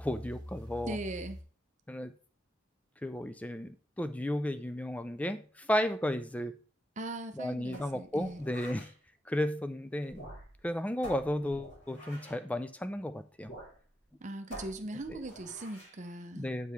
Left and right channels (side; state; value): both; normal; correlation 0.85